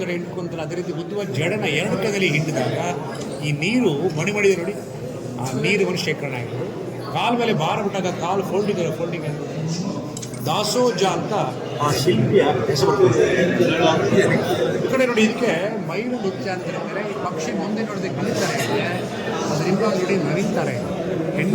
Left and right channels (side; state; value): both; identical; correlation 1.00